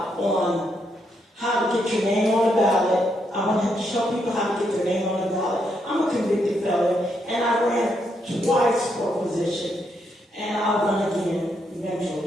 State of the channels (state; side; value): normal; both; correlation 0.78